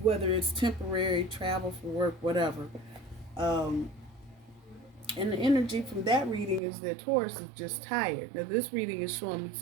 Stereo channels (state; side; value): drops out; left; at 6.6 s